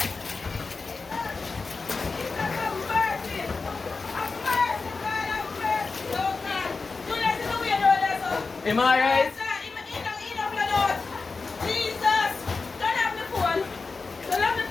Am I right? Jesus! Don't have the phone. Don't have the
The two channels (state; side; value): quieter; right; 4.2 dB